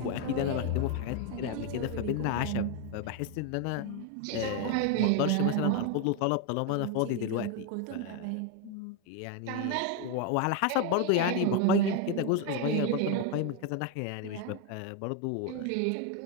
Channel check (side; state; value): both; different; correlation 0.01